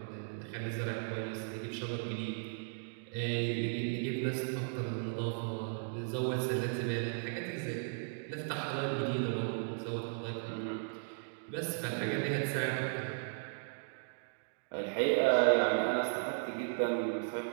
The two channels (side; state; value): left; silent; digital silence